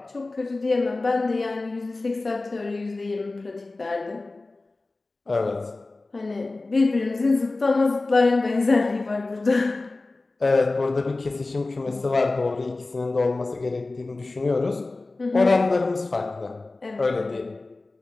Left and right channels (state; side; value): quieter; right; 3.3 dB